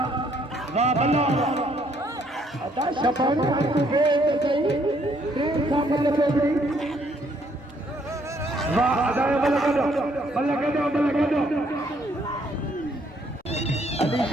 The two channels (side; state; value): both; normal; correlation 0.68